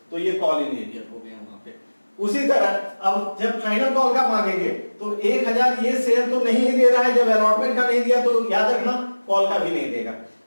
तो ये कॉल इन एरियर हो गया वहां पे। उसी तरह अब जब फाइनल कॉल का मांगेंगे तो 1000 ये शेयर तो नहीं दे रहा है, जब अलॉटमेंट का नहीं दिया तो याद रखना कॉल का भी नहीं देगा।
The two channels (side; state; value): both; inverted; correlation -1.00